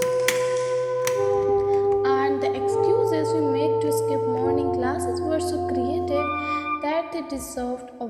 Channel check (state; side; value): identical; both; correlation 1.00